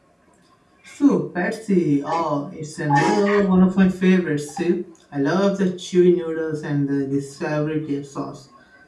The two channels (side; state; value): both; identical; correlation 1.00